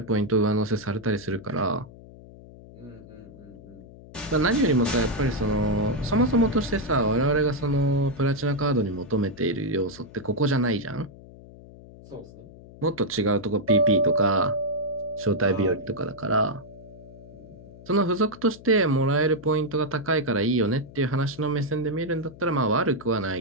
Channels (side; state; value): left; noise; hum, 19 dB below the sound